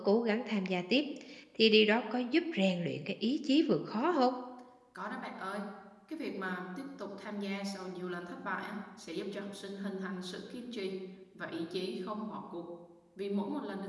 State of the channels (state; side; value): identical; both; correlation 1.00